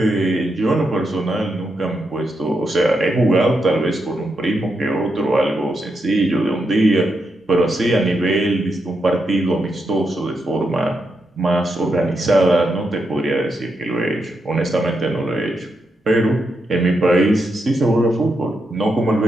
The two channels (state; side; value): normal; both; correlation 0.83